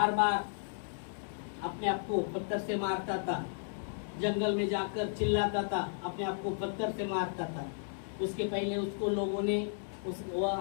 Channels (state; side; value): silent; right; digital silence